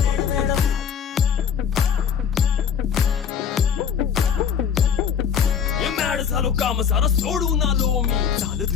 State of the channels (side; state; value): right; quieter; 7.5 dB